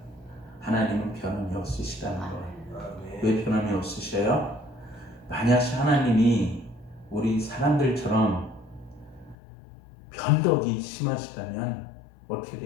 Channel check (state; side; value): drops out; right; at 9.3 s